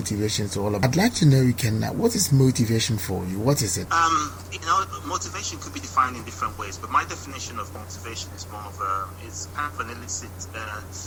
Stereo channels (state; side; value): identical; both; correlation 1.00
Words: is all about. I'd like to know, Ikenna, what is motivation for you? What is it? Motivation could be defined in different ways, but my definition of motivation is more of it's kind of an illicit